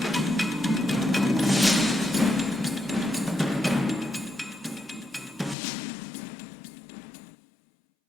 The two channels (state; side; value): drops out; right; at 5.6 s